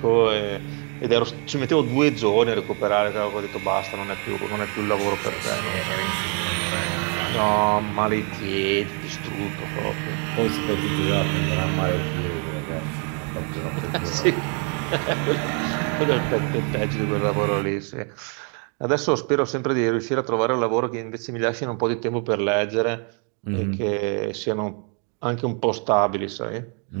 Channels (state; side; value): quieter; left; 39.7 dB